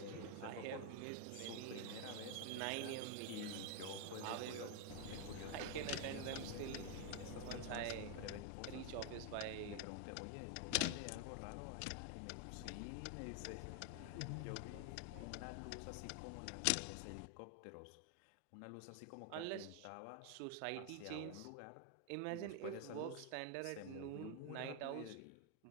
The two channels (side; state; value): both; different; correlation 0.00